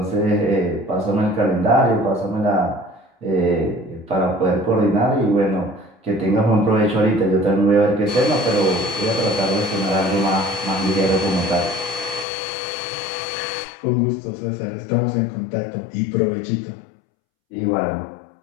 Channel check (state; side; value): drops out; right; at 12.2 s